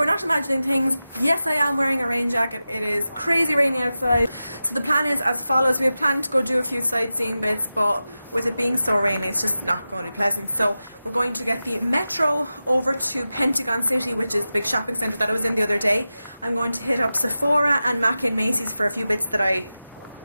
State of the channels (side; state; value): both; inverted; correlation -0.93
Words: not imagining things. Yes, I am wearing a rain jacket. It is crazy rainy outside. So the plan is as follows. We had planned to go do a few sightseeing bits, but with it being so rainy, it's just not going to be pleasant. So we're going to get the metro over to Pentagon City, which is the big shopping centre that I was in the other day. I'm going to hit up Sephora and Mackie and Macy's for a few bits that I